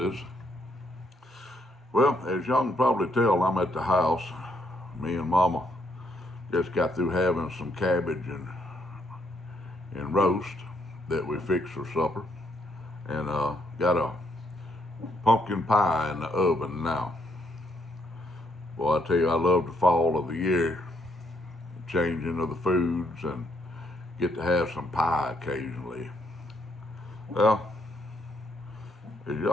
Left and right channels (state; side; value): normal; both; correlation 0.73